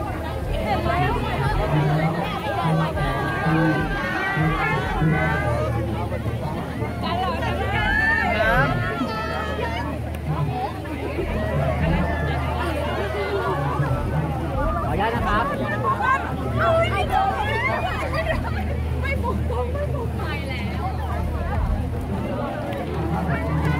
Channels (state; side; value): identical; both; correlation 1.00